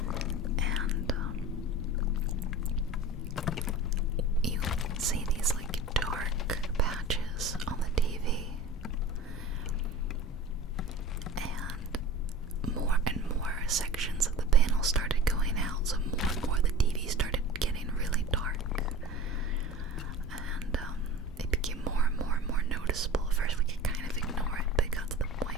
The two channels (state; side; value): normal; both; correlation 0.36